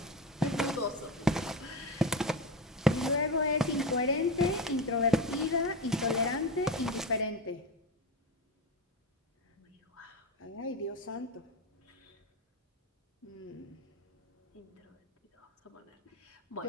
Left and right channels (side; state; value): both; normal; correlation 0.21